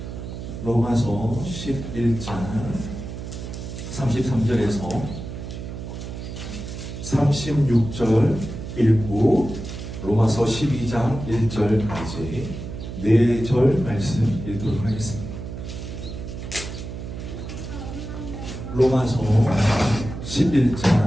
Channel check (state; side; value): noise; right; hum, 8 dB below the sound